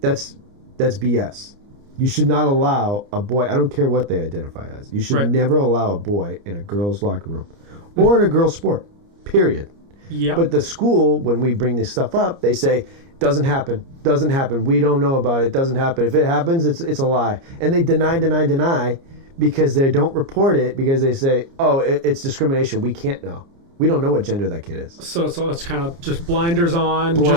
BS. You should not allow a boy, I don't care what they identify as, you should never allow a boy in a girl's locker room or in a girl's sport, period. Yep. But the school, when we bring this stuff up, they say, doesn't happen. We don't know about it. Doesn't happen. If it happens, it's a lie. And they deny because they don't report it because they say, oh, it's discrimination. We can't know. We don't know what gender that kid is. So it's kind of just blinders on.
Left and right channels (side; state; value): left; late; 29 ms